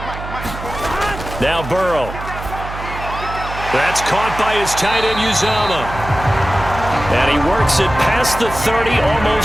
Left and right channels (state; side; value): noise; right; hum, 10 dB below the sound